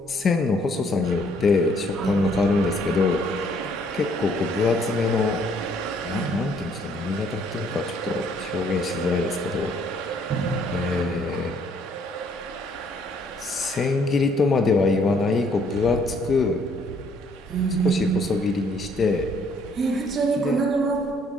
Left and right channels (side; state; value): both; normal; correlation 0.65